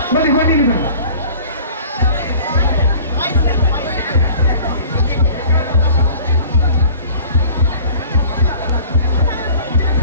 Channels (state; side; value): inverted; both; correlation -0.46